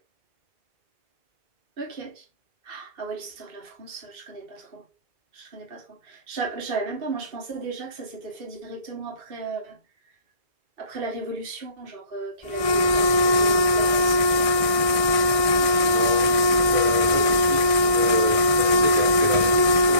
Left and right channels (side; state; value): left; late; 1.7 ms